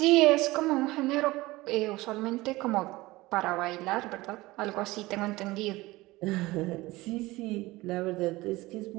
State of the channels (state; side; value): quieter; left; 19.9 dB